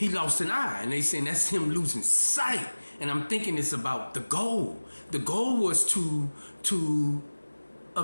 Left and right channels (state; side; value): inverted; both; correlation -1.00